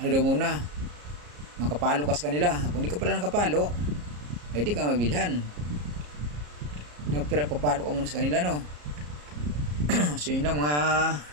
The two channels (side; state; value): left; late; 34 ms